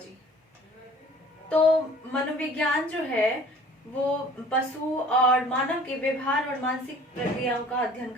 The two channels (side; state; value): both; normal; correlation 0.49